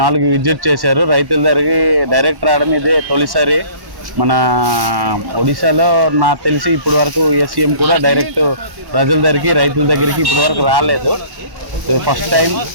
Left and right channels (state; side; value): late; left; 1.1 ms